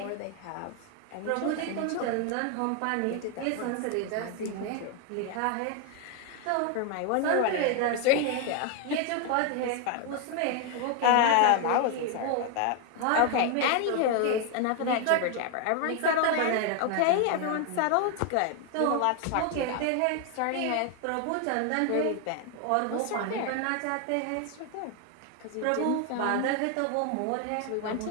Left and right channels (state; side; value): different; both; correlation 0.01